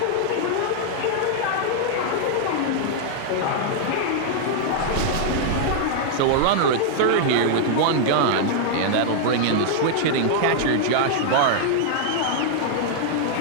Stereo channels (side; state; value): both; different; correlation -0.01